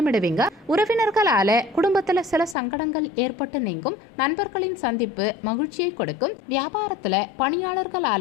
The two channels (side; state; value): right; drops out; at 2.6 s